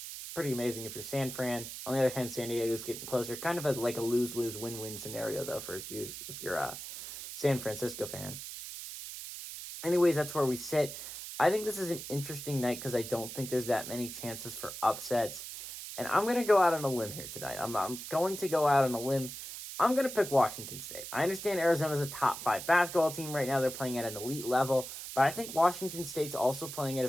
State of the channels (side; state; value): right; noise; hiss, 9 dB below the sound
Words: pretty amazing if you're San Fran. On the other hand, San Diego's getting closer. Kind of like a lose-lose, win-win scenario, though, for if you're a San Francisco fan. Anyways, that's where we sit. I think this is an interesting night because I don't think there's that many chances for upsets. And I'm going to go out on a limb here tonight. I'm going to go out on a limb. I'm going to pick Washington State. I understand Arizona's a top 5 basketball team right now. They're playing at an elite level. But I think Washington State's also playing at a